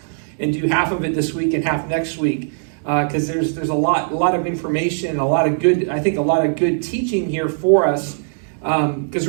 and do half of it this week and half next week, because there's a lot of information, a lot of good teaching here for us, because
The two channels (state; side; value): silent; left; digital silence